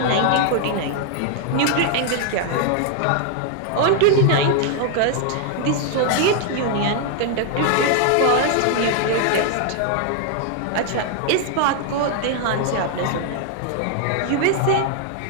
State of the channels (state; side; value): different; both; correlation 0.00